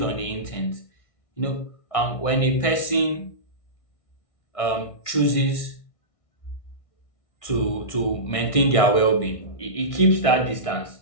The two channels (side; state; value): right; late; 1.6 ms